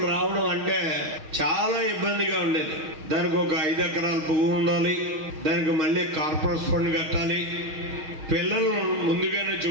రావడం అంటే చాలా ఇబ్బందిగా ఉండేది. దానికి ఒక 5 ఎకరాల పువ్వు ఉండాలి, దానికి మళ్ళీ కార్పొరేట్ ఫండ్ కట్టాలి, పిల్లలు ముందుగానే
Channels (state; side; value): late; left; 6.4 ms